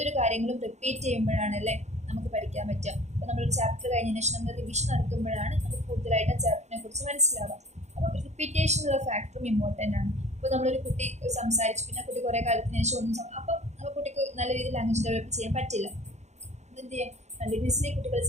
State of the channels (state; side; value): late; left; 0.33 ms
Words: കാര്യങ്ങളും റിപ്പീറ്റ് ചെയ്യുമ്പോഴാണല്ലേ നമുക്ക് പഠിക്കാൻ പറ്റുക. അപ്പോൾ നമ്മളൊരു ചാപ്റ്റർ കഴിഞ്ഞതിന് ശേഷം നമ്മൾ റിവിഷൻ നടത്തുമ്പോഴാണ് നമുക്ക് കൂടുതലായിട്ട് ആ ചാപ്റ്ററിനെ കുറിച്ച് മനസ്സിലാവുക. അപ്പോൾ റിപ്പീറ്റേഷൻ എന്നുള്ള ഫാക്ടറും ഇമ്പോർട്ടൻ്റ് ആണ്. ഇപ്പോൾ നമ്മളൊരു കുട്ടി സംസാരിച്ചു, പിന്നെ കുട്ടി കുറേ കാലത്തിന് ശേഷം ഒന്നും അപ്പം ആ കുട്ടിക്ക് നല്ല രീതിയിൽ ലാംഗ്വേജ് ഡെവലപ്പ് ചെയ്യാൻ പറ്റില്ല. എന്ത് ചെയ്യാം, കണ്ടിന്യൂസ്ലി കുട്ടികൾ